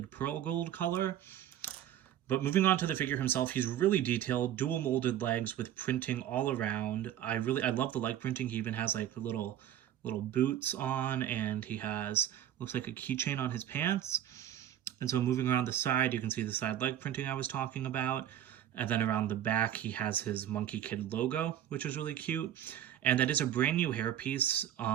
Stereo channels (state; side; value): quieter; left; 11.3 dB